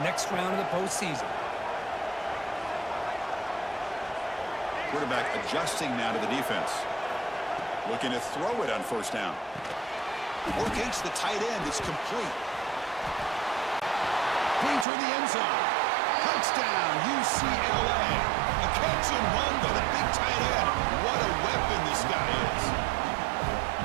next round of the postseason. Quarterback adjusting now to the defense. Looking to throw it on first down. Locates the tight end. It's complete. Clean toward the end zone. Touchdown, UCLA. A catch and run by the big tight end. What a weapon this guy is.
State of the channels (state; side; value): drops out; left; at 14.9 s